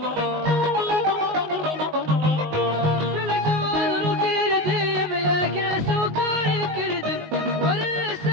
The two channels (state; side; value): late; left; 19 ms